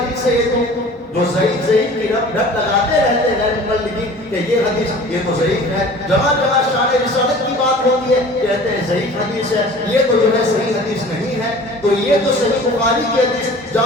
ہے یہ تو، جو ضعیف کی ڈھٹ لگاتے رہتے ہیں مبلغین کہ یہ حدیث یہ تو ضعیف ہے، جگہ جگہ شان رسالت کی بات ہوتی ہے کہتے ہیں ضعیف حدیث ہے، یہ تو جو ہے صحیح حدیث نہیں ہے۔ تو یہ تو صحیح بخاری کی حدیث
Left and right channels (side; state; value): both; normal; correlation 0.44